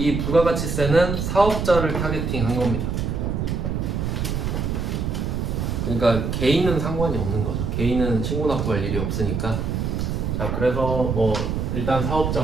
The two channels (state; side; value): noise; right; rumble, 1 dB below the sound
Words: 부가가치세는 사업자를 타겟팅 한 겁니다. 그러니까 개인은 상관이 없는 거죠. 개인은 신고납부할 일이 없으니까. 자, 그래서 뭐 일단